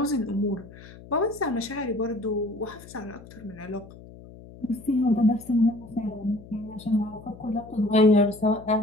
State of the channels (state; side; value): noise; left; hum, 18 dB below the sound